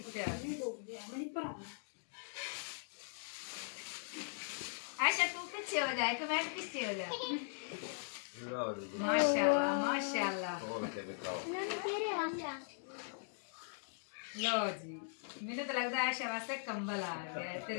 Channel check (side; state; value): right; silent; digital silence